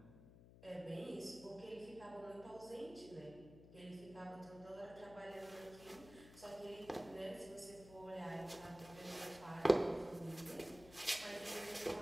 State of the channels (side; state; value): left; noise; hum, 18 dB below the sound